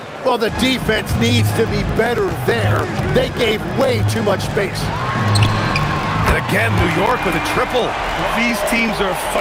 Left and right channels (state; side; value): identical; both; correlation 1.00